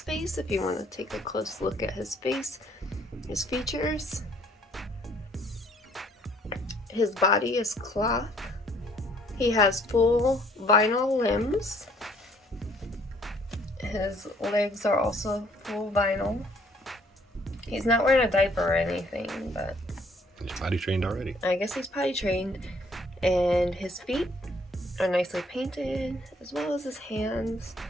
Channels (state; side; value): normal; both; correlation 0.62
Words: face if you want to take a close look at his face, his features. His body is cloth. He has full vinyl limbs. His legs are also full vinyl. He's not wearing a diaper or anything, but he's potty trained already. I guess he's potty trained. And his feet are nicely painted, as well as his hands.